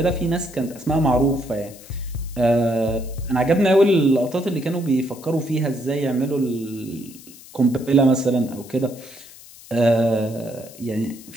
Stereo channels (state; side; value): noise; left; hiss, 20 dB below the sound